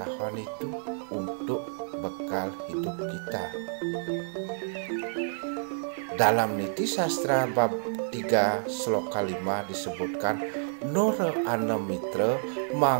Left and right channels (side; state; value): left; silent; 58 dB below the other